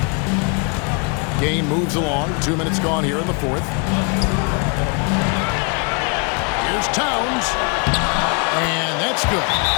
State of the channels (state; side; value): quieter; right; 34.0 dB